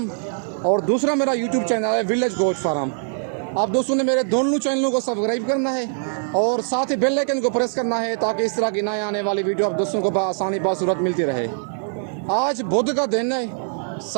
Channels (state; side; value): silent; left; digital silence